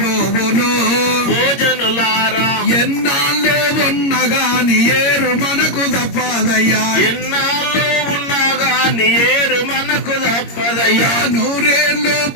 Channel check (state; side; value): late; right; 22 ms